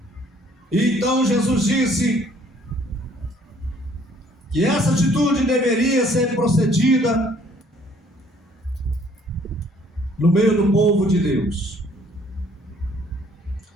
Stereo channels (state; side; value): normal; both; correlation 0.60